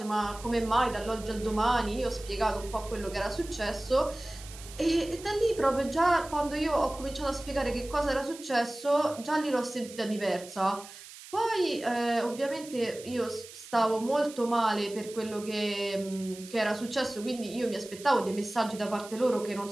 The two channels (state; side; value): noise; right; hiss, 16 dB below the sound